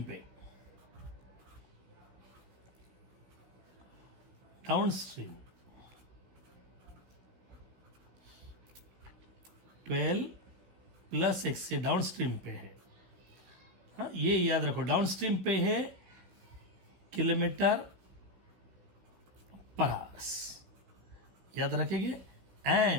पे, डाउन स्ट्रीम 12 प्लस एक्स से डाउन स्ट्रीम पे है। हाँ, ये याद रखो, डाउन स्ट्रीम पे है किलोमीटर पर आवर्स, याद रखेंगे।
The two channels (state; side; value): late; left; 16 ms